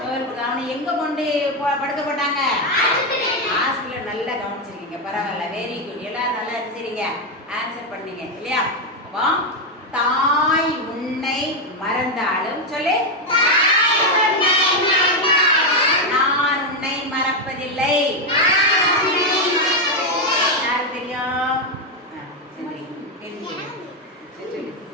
தோல் கொடுத்தா. அவனை எங்க கொண்டு படுக்க போட்டாங்க, ஹாஸ்பிட்டல். நல்லா கவனிச்சிருக்கீங்க, பரவாயில்ல, வெரி குட். எல்லாரும் நல்லா சரிங்க ஆன்சர் பண்ணீங்க இல்லையா. அப்போ தாய் உன்னை மறந்தாலும் சொல்லு, நான் உன்னை மறப்பதில்லை. யாருக்கு தெரியும்,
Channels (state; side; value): normal; both; correlation 0.05